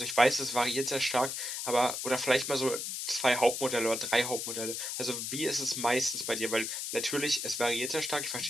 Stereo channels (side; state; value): left; noise; hiss, 4 dB below the sound